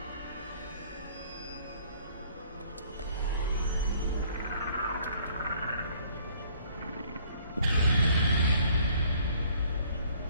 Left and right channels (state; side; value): inverted; both; correlation -0.58